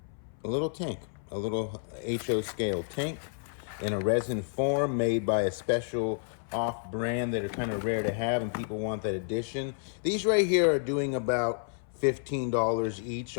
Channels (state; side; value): silent; right; 57 dB below the other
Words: little tank, a little HO scale tank in a resin form made by a special off brand that are kind of rare to have and people want that edition. These right here are doing about $15 each